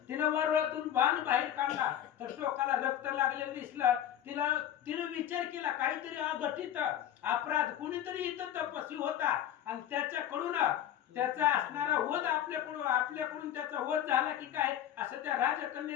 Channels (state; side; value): quieter; right; 10.9 dB